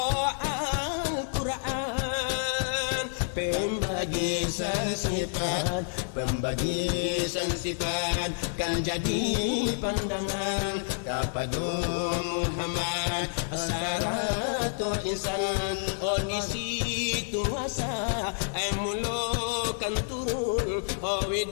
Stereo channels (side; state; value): right; silent; digital silence